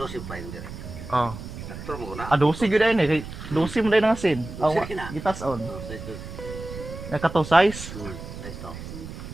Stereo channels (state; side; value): noise; right; rumble, 11 dB below the sound